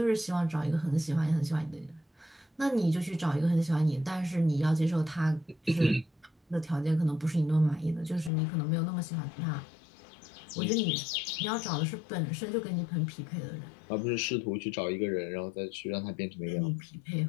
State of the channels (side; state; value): right; drops out; at 8.3 s